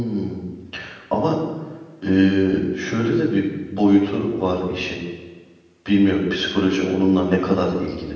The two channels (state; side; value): identical; both; correlation 1.00